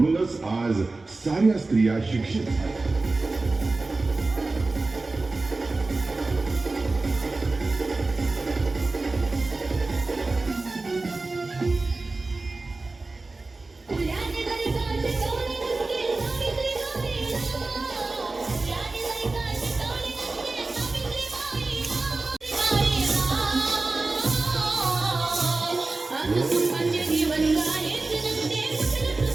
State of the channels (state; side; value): quieter; left; 3.4 dB